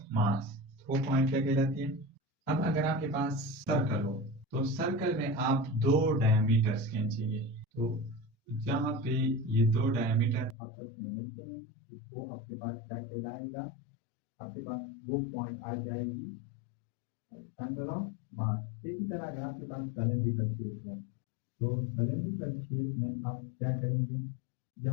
मास। वो पॉइंट क्या कहलाती है। अब अगर आपके पास सर्कल हो तो सर्कल में आप दो डायमीटर्स खींचेंगे, तो जहाँ पे ये दो डायमीटर आपस में मिलते हैं तो वो आपके पास क्या कहलाएगा, आपके पास वो पॉइंट आ जाएगी सेंटर ऑफ मास। इसी तरह अगर आपके पास सिलेंड्रिकल शेप हो तो सिलेंड्रिकल शेप में आप क्या करेंगे,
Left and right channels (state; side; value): drops out; right; at 10.6 s